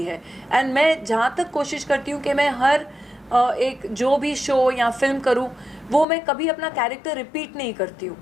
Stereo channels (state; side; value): drops out; right; at 6.1 s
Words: है। एंड मैं जहाँ तक कोशिश करती हूँ कि मैं हर एक जो भी शो या फिल्म करूँ वो मैं कभी अपना कैरेक्टर रिपीट नहीं करती हूँ।